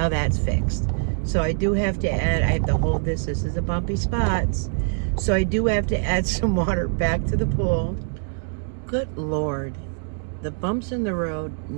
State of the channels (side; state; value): left; silent; digital silence